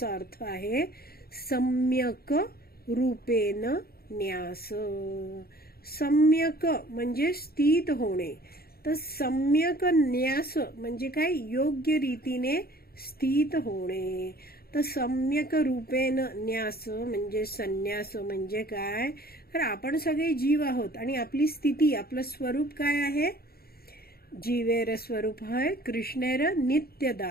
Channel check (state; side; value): late; right; 0.44 ms